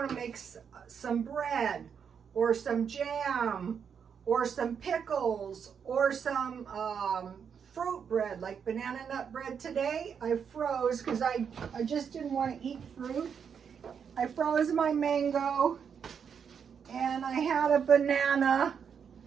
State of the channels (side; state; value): left; quieter; 7.1 dB